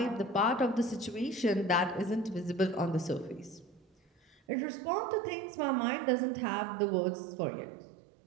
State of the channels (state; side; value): drops out; left; at 4.4 s